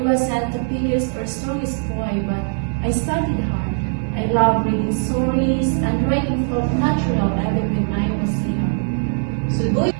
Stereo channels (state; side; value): silent; left; 65 dB below the other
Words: wasn't the biggest or strongest boy, but I studied hard. I loved reading stories and writing felt natural even when I was young.